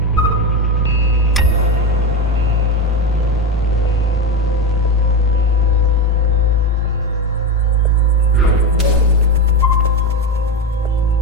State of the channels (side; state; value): both; normal; correlation 0.17